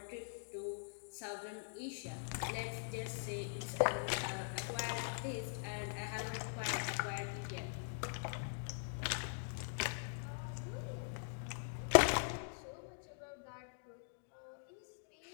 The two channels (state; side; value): silent; right; digital silence